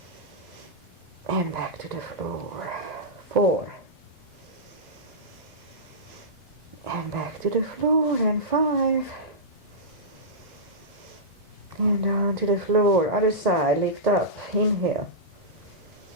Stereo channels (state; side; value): normal; both; correlation -0.15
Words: And back to the floor. 4. And back to the floor. And 5. And down to the floor. Other side. Lift up. Inhale.